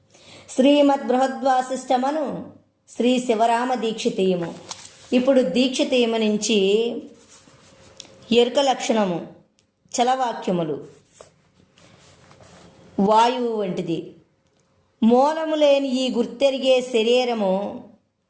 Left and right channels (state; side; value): identical; both; correlation 1.00